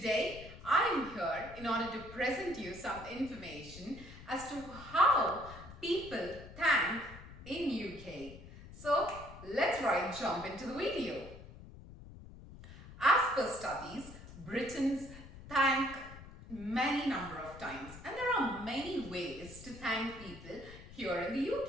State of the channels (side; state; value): left; noise; rumble, 16 dB below the sound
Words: I am here in order to present you some information as to how people thank in UK. So let's jump into the video. As per studies, Britons thank many number of times, and there are many ways to thank people here in the